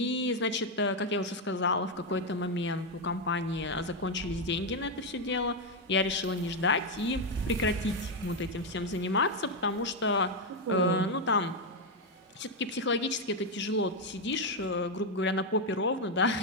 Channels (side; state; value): both; normal; correlation 0.04